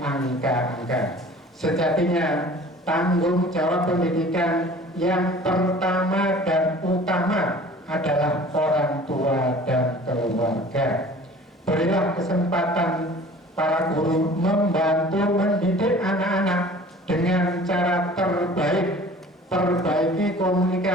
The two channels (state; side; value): normal; both; correlation 0.46